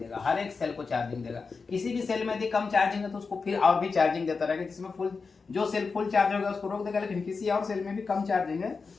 हर एक सेल को चार्जिंग देगा। किसी भी सेल में यदि कम चार्जिंग है तो उसको फिर और भी चार्जिंग देता रहेगा। जिसमें फुल, जो सेल फुल चार्ज होगा उसको रोक देगा, लेकिन किसी और सेल में भी कम चार्जिंग है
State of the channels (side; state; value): right; quieter; 4.7 dB